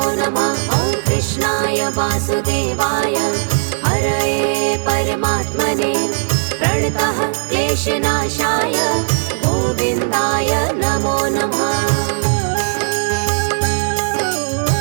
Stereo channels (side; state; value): left; silent; 62 dB below the other